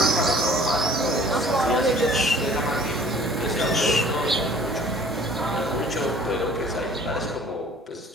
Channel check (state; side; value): normal; both; correlation 0.51